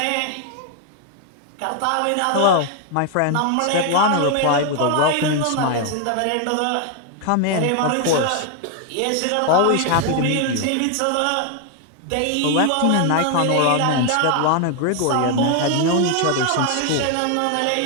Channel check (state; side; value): different; both; correlation 0.00